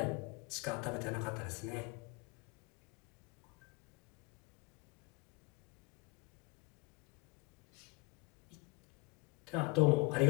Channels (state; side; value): quieter; right; 26.4 dB